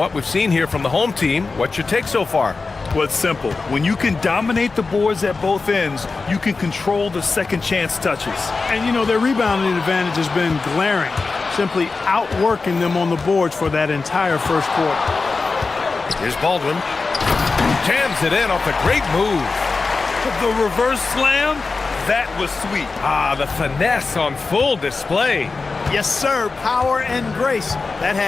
we've seen here from the home team, what's your take so far? Well, it's simple. When you can dominate the boards at both ends, you can control the second chance touches. And, you know, their rebounding advantage has been glaring, simply outworking them on the boards for that entire first quarter. Here's Baldwin. Jams it in off a great move. The reverse slam, that was sweet. Ah, the finesse on full display. Yes, sir. Power and grace. That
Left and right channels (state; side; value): quieter; right; 4.1 dB